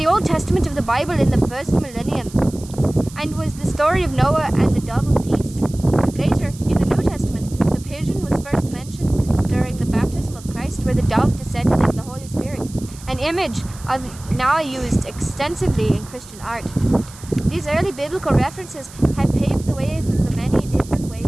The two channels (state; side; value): noise; right; hiss, 19 dB below the sound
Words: Old Testament of the Bible in the first millennium, and was the story of Noah and the dove of peace. Later, in the New Testament, the pigeon was first mentioned during the baptism of Christ, where the dove descended as the Holy Spirit, an image now used extensively in Christian art. These early biblical references have paved the way for the many different